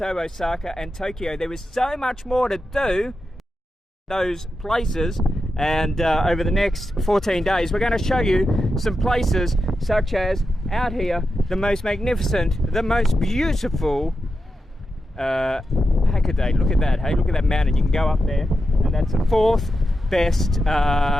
Osaka and Tokyo. There is so much more to do those places. And over the next 14 days, we're going to show you some places such as out here, the most magnificent, the most beautiful Hakodate. Look at that, hey, look at that mountain. You can go up there, and that's the fourth best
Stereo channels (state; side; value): normal; both; correlation 0.89